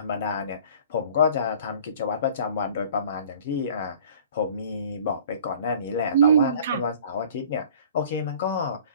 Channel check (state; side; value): inverted; both; correlation -0.49